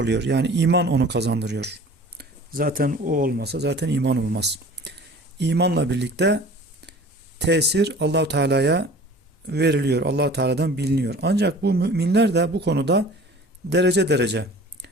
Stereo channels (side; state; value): both; normal; correlation 0.44